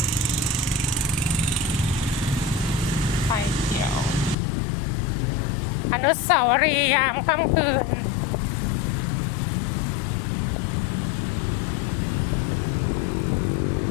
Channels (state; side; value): drops out; right; at 4.4 s